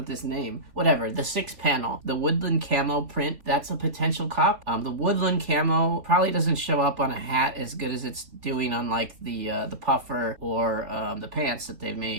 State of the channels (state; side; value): late; left; 3.7 ms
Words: this name? Whatever, the 6-panel. The Woodland Camo print, that's a potential cop. The Woodland Camo probably doesn't show up on a hat as good as it's doing on like the puffer or the pants that they've